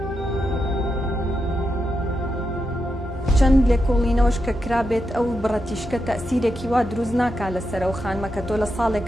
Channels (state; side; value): normal; both; correlation 0.85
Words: چەند لێکۆڵینەوەش کە کرابێت ئەو بڕەتیشکە تەسیرێکی وا دروست ناکات لەسەر ئەو خانمە کە تۆ لە